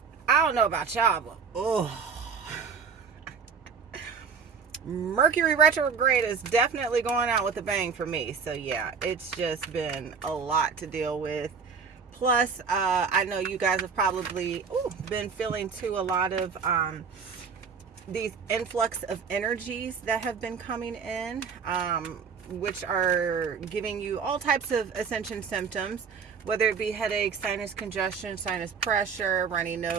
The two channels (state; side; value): quieter; left; 6.0 dB